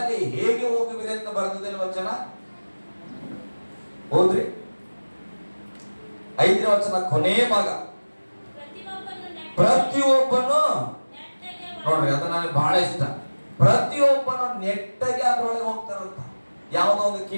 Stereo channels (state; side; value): inverted; both; correlation -1.00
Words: ಹೇಗೆ ಹೋಗುವಿರಿ ಅಂತ ಬರ್ತದೆ ವಚನ. ಹೋದ್ರಿ 5ನೇ ವಚನ ಕೊನೆಯ ಭಾಗ. ಪ್ರತಿಯೊಬ್ಬನು ನೋಡ್ರಿ, ಅದು ನನಗೆ ಬಹಳ ಇಷ್ಟ. ಪ್ರತಿಯೊಬ್ಬನು ನೆಟ್ಟಗೆ ಅದ್ರೊಳಗೆ ಹೋಗ್ತಾರಂತ. ಯಾವುದೋ ಒಂದು